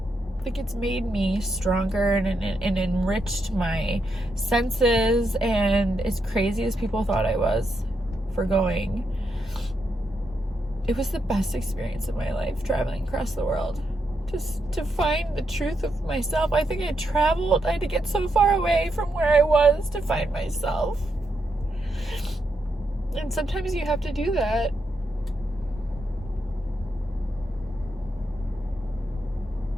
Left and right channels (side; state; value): both; normal; correlation 0.82